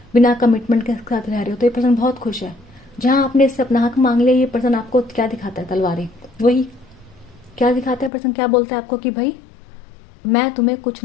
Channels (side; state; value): right; drops out; at 8.1 s